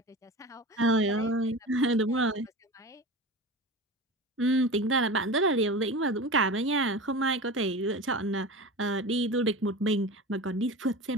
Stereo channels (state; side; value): normal; both; correlation 0.30